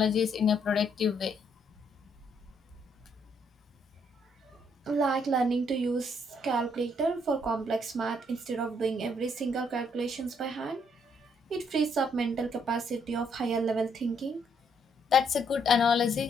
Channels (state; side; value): normal; both; correlation 0.71